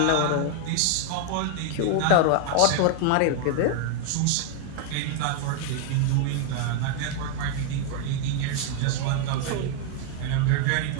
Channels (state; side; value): different; both; correlation 0.00